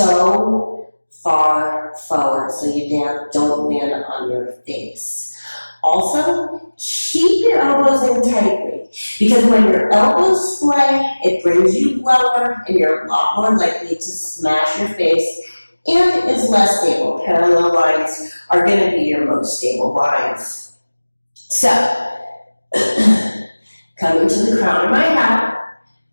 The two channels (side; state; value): both; inverted; correlation -1.00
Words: far forward so you don't land on your face. Also, keep your elbows in tightly, because when your elbows splay, it brings you lower and you're a lot more likely to smash your face and is less stable. Parallel lines are going to be your most stable lines. So, coming to the crown of my head